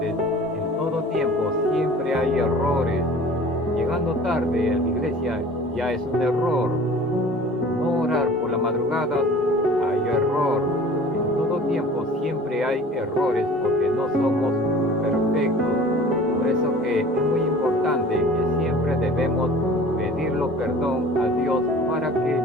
en todo tiempo siempre hay errores. Llegando tarde a la iglesia ya es un error. No orar por la madrugada, hay error. En todo tiempo siempre hay errores porque no somos perfectos. Por eso que es muy importante que siempre debemos pedirlo perdón a Dios para que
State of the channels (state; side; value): normal; both; correlation 0.44